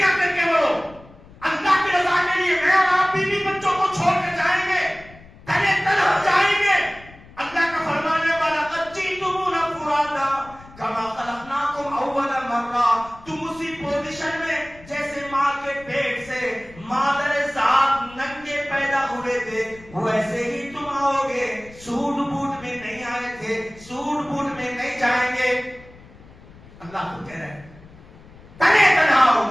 کر کے بڑھو, اللہ کی رضا کے لیے. میں اور آپ بیوی بچوں کو چھوڑ کر جائیں گے, تنے تنہا جائیں گے. اللہ کا فرمانے والا قد جئتمونا فرادا کما خلقناکم اول مرہ, تم اسی پوزیشن میں جیسے ماں کے پیٹ سے مادر ذات ننگے پیدا ہوئے تھے, ویسے ہی تم آؤ گے. سوٹ بوٹ میں نہیں آئے تھے, سوٹ بوٹ میں نہیں جائیں گے. اللہ کو کہہ رہے ہیں تنے تنہا آؤ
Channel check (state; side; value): noise; left; rumble, 22 dB below the sound